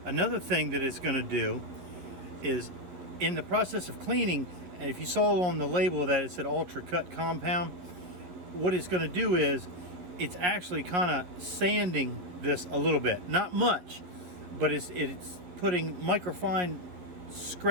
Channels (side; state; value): left; late; 11 ms